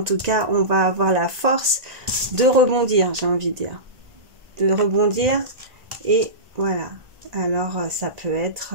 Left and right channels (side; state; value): left; late; 1.9 ms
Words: tout cas, on va avoir la force de rebondir, j'ai envie de dire. De rebondir et voilà. Alors ça peut